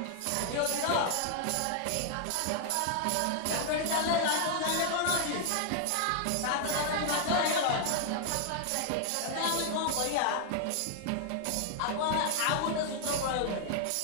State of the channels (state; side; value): different; both; correlation 0.00